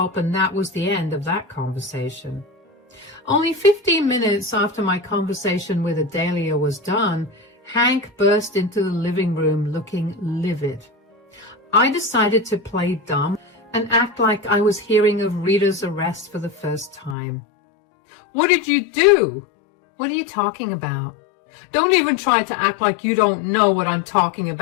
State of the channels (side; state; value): right; drops out; at 17.2 s